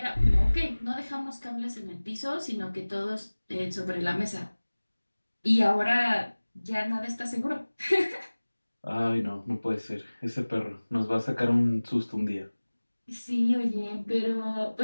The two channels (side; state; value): both; inverted; correlation -1.00